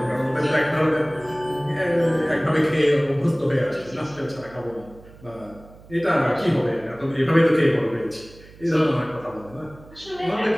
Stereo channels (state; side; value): noise; right; hum, 22 dB below the sound